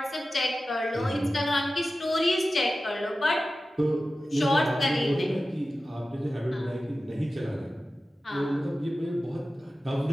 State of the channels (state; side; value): normal; both; correlation 0.94